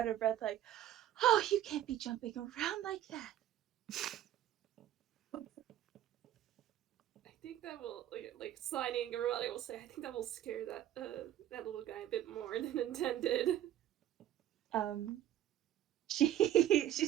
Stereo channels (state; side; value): quieter; left; 12.1 dB